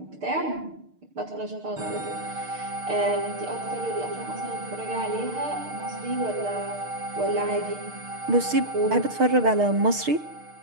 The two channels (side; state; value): left; late; 6.6 ms